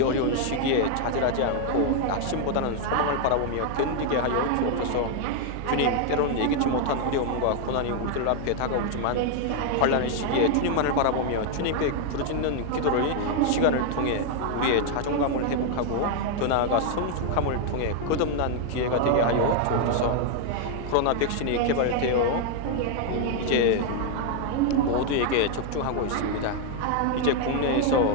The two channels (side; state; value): both; different; correlation 0.00